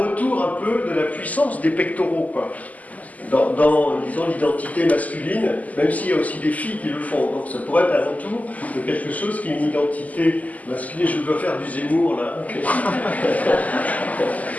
un peu de la puissance des pectoraux, quoi. Dans disons, l'identité masculine, même s'il y a aussi des filles qui le font. Donc ça pourrait être un retour de quelque chose qui est une identité masculine. Je dois faire du Zemmour, là. Okay.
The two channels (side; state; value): right; late; 0.076 ms